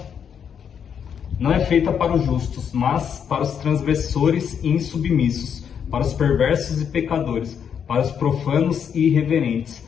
não é feita para os justos, mas para os transgressores e insubmissos, para os perversos e pecadores, para os profanos e irreverentes,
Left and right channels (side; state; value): right; quieter; 7.8 dB